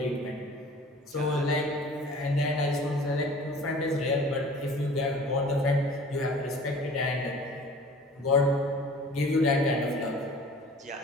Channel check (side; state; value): both; normal; correlation 0.45